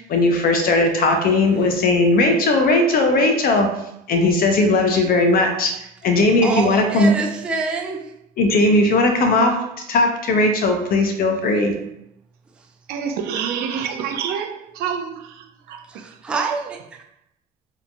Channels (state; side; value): normal; both; correlation 0.23